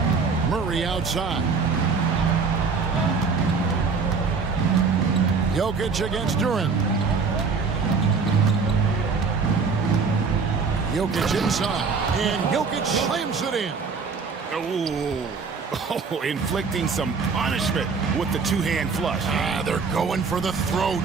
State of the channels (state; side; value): quieter; left; 5.0 dB